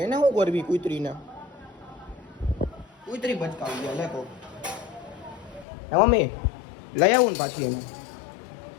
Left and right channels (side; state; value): right; drops out; at 5.7 s